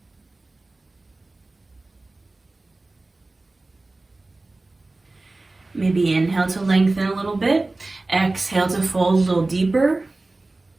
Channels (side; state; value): left; quieter; 3.1 dB